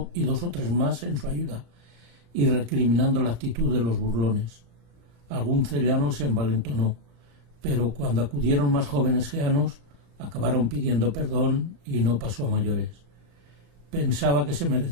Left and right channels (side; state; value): left; late; 35 ms